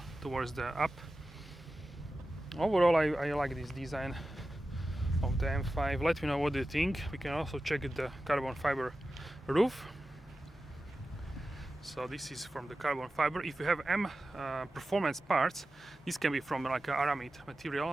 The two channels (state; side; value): normal; both; correlation 0.94